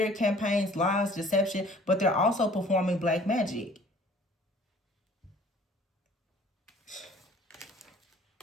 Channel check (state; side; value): normal; both; correlation 0.52